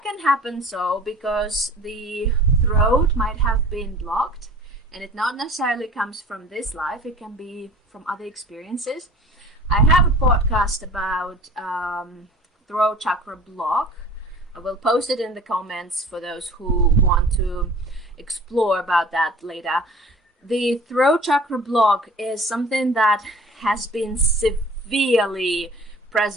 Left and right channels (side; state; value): both; normal; correlation 0.44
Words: can happen because the throat might have been blocked, and it not necessarily comes from this life. It can be from other experiences. I have a podcast about throat chakra block. I will post it in the comments for those who want to explore about that later. The throat chakra block is something that has been severely